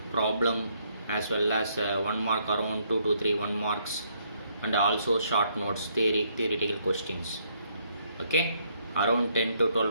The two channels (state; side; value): inverted; both; correlation -0.71